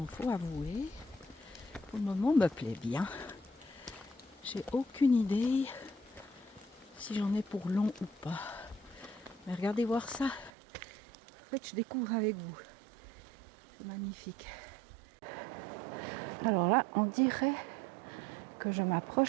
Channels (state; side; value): drops out; left; at 10.5 s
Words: faut avouer, pour le moment me plaît bien. J'ai aucune idée si j'en ai pour long ou pas. Mais regardez voir ça. En fait, je découvre avec vous. C'est magnifique. Alors là, on dirait que je